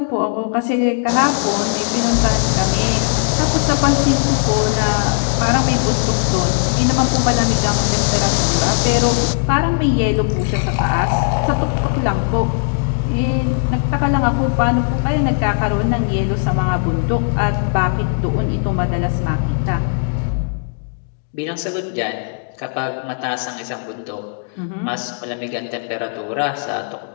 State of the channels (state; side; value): silent; right; 67 dB below the other